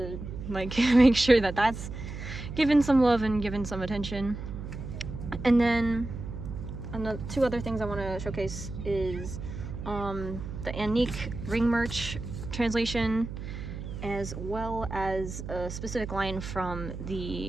like make sure that that's given some love and given some attention. And then two other things I want to showcase is the Anique ring merch translation, as well as a specific line from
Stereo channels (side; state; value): right; noise; hum, 8 dB below the sound